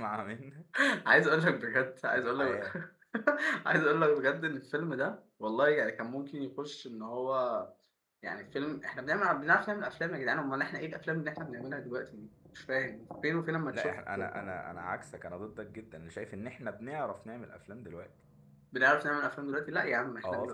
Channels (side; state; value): both; identical; correlation 1.00